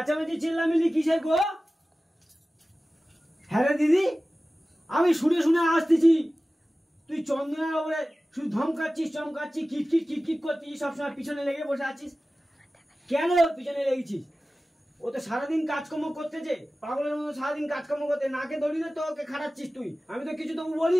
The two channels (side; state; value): both; normal; correlation 0.96